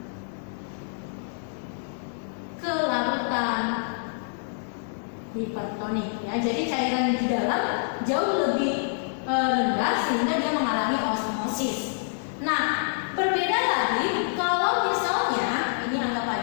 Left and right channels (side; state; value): right; silent; digital silence